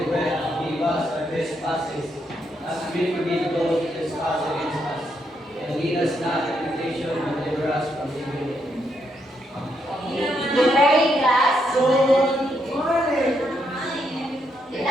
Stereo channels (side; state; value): both; normal; correlation 0.78